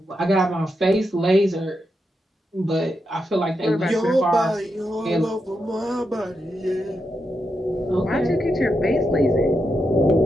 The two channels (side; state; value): both; normal; correlation 0.85